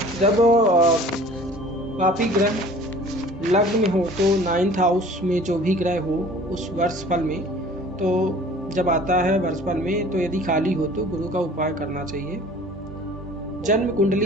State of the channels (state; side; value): normal; both; correlation 0.48